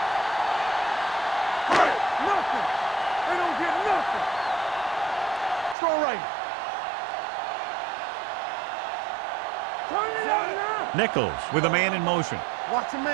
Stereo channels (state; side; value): drops out; left; at 5.8 s